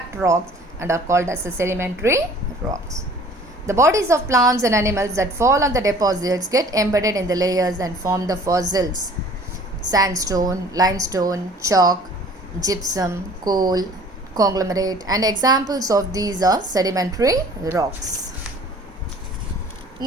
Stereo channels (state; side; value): normal; both; correlation 0.50